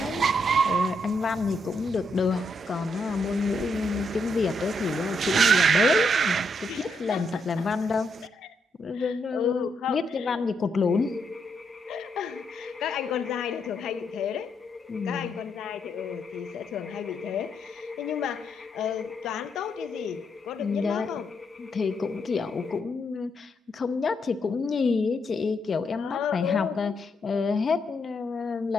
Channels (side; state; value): both; normal; correlation 0.78